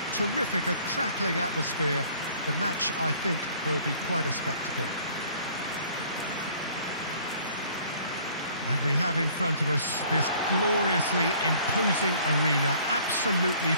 terrific, a crackling atmosphere. The match, I think, will be quite a spectacle. And we have in front of us this gloriously imposing arena, absolutely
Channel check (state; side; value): inverted; both; correlation -0.56